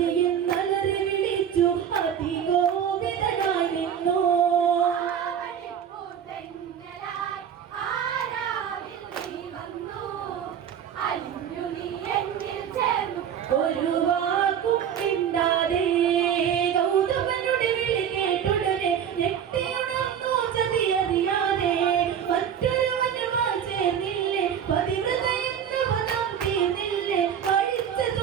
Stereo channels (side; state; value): left; quieter; 8.7 dB